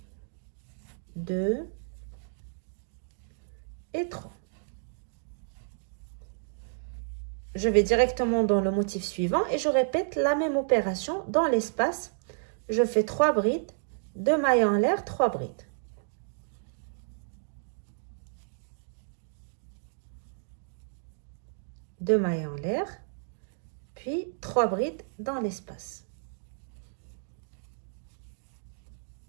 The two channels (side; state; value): left; silent; digital silence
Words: 2 et 3. Je vais directement dans le motif suivant et je répète la même opération dans l'espace. Je fais 3 brides, 2 mailles en l'air, 3 brides. 2 mailles en l'air, puis 3 brides dans l'espace.